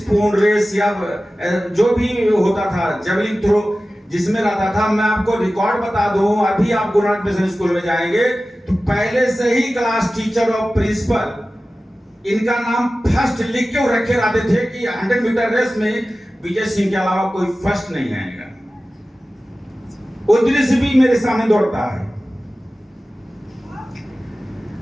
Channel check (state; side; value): normal; both; correlation 0.96